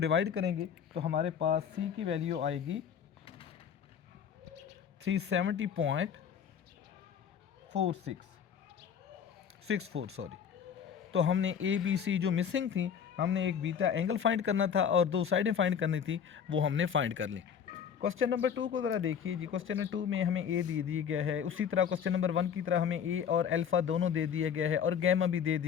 करेंगे तो हमारे पास C की वैल्यू आएगी 370.64 सॉरी। तो हमने ABC जो मिसिंग थी, हमने एक बीटा एंगल फाइंड करना था और दो साइडें फाइंड करनी थी, वो हमने फाइंड कर ली। क्वेश्चन नंबर 2 को ज़रा देखिए जी। क्वेश्चन नंबर 2 में हमें ए दे दिया गया है, उसी तरह क्वेश्चन नंबर 1 की तरह हमें ए और अल्फ़ा दोनों दे दिया गया है और गैमा भी दे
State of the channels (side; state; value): right; quieter; 7.8 dB